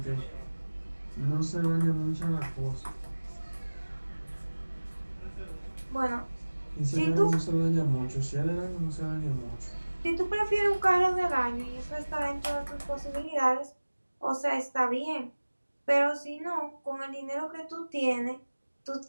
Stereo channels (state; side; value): inverted; both; correlation -1.00